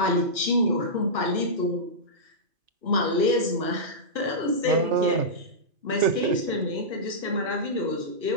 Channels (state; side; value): late; left; 2.5 ms